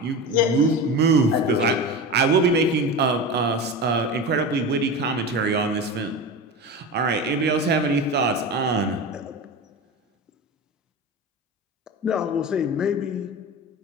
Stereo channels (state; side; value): normal; both; correlation 0.27